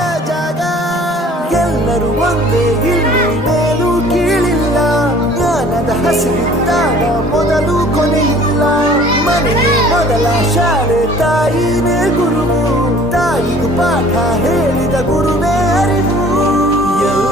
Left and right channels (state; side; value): normal; both; correlation 0.51